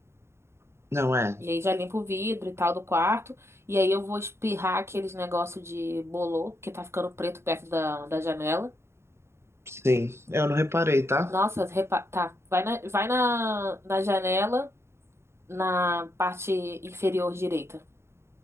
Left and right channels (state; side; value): late; left; 0.13 ms